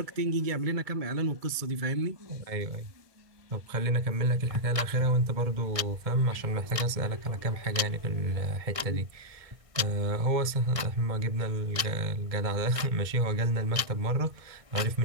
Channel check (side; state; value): left; late; 1.6 ms